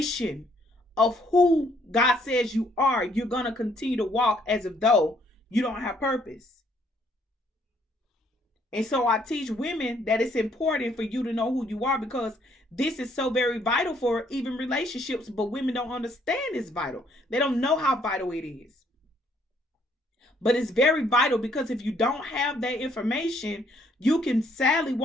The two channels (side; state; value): both; normal; correlation 0.67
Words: of who God says you are, you're going to continue to walk as if though you don't have purpose. And so I teach women that it's important for you to know who you are, because this is so very vital for even relationships. But women don't understand it's vital. They don't know how vital it is. But it's very vital, because if you don't have that information, you can sadly